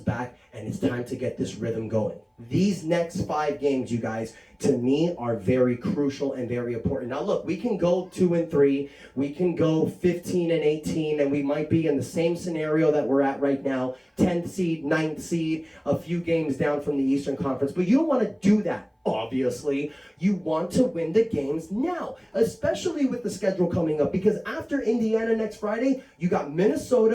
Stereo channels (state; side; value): identical; both; correlation 1.00